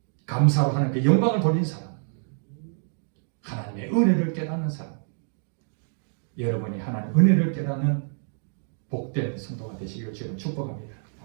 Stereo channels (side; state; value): left; silent; digital silence